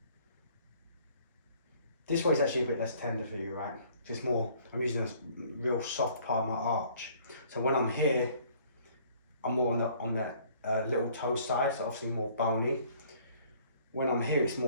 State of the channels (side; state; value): both; inverted; correlation -0.58